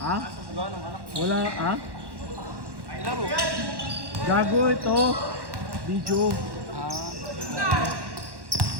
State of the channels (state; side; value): late; left; 1.1 ms